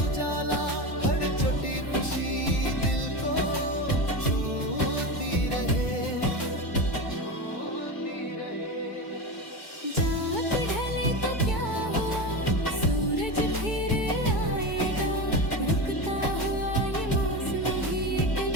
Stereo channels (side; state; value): right; late; 2.3 ms